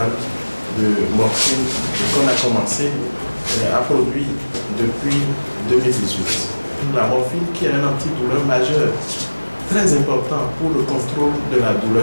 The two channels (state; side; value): inverted; both; correlation -1.00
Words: de morphine qu'on a commencé à produire depuis 2018. La morphine qui est un antidouleur majeur, très important pour le contrôle de la